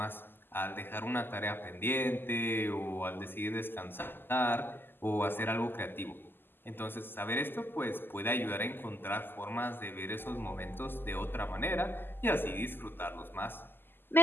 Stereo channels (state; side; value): late; right; 0.097 ms